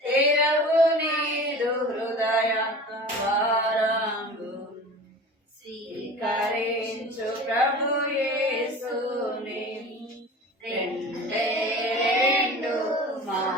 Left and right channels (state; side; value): normal; both; correlation 0.38